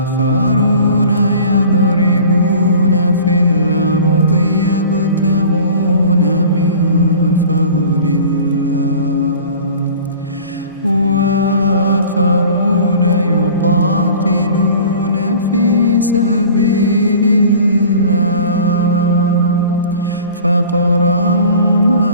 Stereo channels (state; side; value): inverted; both; correlation -0.44